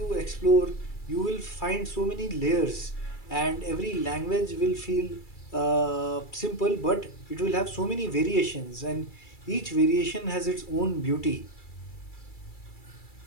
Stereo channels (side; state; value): right; late; 2.3 ms